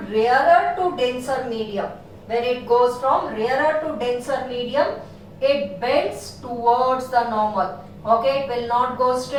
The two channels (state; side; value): identical; both; correlation 1.00